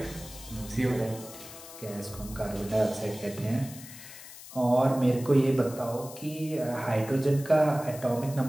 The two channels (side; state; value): left; noise; hiss, 15 dB below the sound